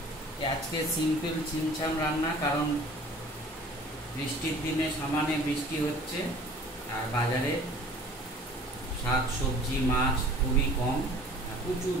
আজকে সিম্পল ছিমছাম রান্না, কারণ বৃষ্টির দিনে সামান্য বৃষ্টি হচ্ছে আর বাজারে শাক সবজি মাছ খুবই কম, প্রচুর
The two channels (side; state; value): both; normal; correlation 0.48